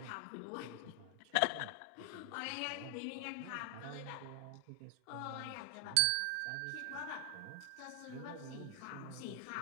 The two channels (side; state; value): both; different; correlation 0.00